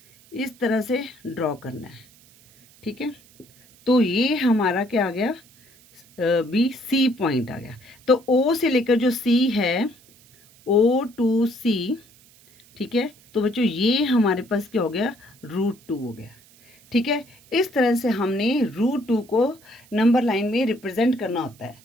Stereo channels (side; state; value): right; noise; hiss, 27 dB below the sound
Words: इस तरह से ड्रॉ करना है। ठीक है, तो ये हमारा क्या आ गया, बी सी पॉइंट आ गया। तो ओ से लेकर जो सी है, ओ टू सी, ठीक है, तो बच्चों ये हमारे पास क्या हो गया, √2 हो गया। ठीक है, इस तरह से हमने √2 को नंबर लाइन में रिप्रेजेंट करना होता है।